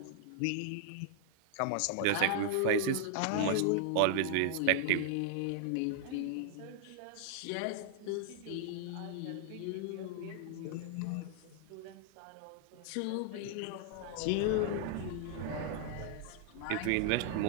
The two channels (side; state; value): both; different; correlation -0.01